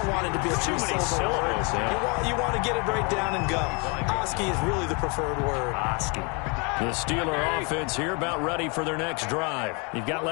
want it to be a too many syllables. Yeah. You want to get it right down and go. Oski is really the preferred word. Oski. The Steeler offense here about ready for their next drive. You've got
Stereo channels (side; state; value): right; quieter; 31.9 dB